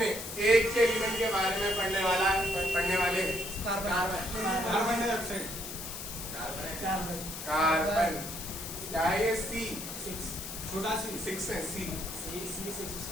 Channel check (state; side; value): noise; left; hiss, 8 dB below the sound